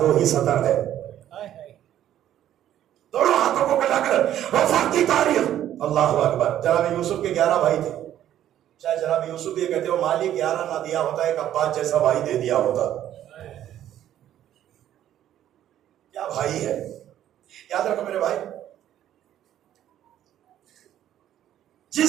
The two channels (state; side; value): quieter; left; 11.6 dB